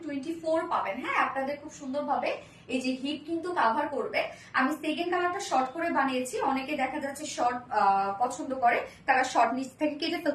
24 পাবেন। হ্যাঁ, আপনাদের খুব সুন্দরভাবে এই যে হিপ কিন্তু কাভার করবে। আমি সেকেন্ড কালারটা শর্ট করে বানিয়েছি, অনেকে দেখা যাচ্ছে শর্ট পছন্দ করে, তারা শর্ট নিচ থেকে কেটে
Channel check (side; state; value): both; identical; correlation 1.00